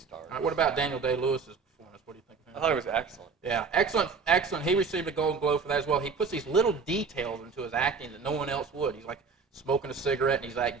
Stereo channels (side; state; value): left; quieter; 5.1 dB